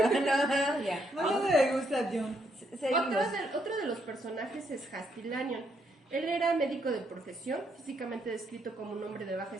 ya. Bueno, me gusta John. Seguimos. Otro de los personajes es Hasty Lanyon. Él era médico de profesión, físicamente descrito como un hombre de baja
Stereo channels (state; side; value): normal; both; correlation 0.74